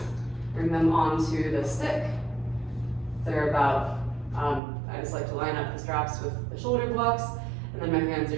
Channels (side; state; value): left; drops out; at 4.6 s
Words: bring them onto the stick. They're about, I just like to line up the straps with the shoulder blocks, and then my hands